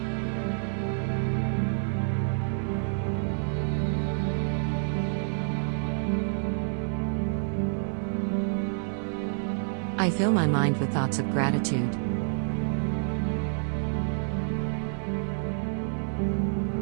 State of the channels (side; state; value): left; silent; 55 dB below the other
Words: I fill my mind with thoughts of gratitude.